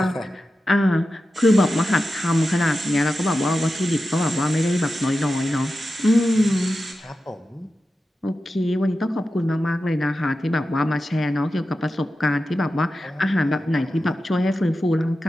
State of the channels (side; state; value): both; normal; correlation 0.92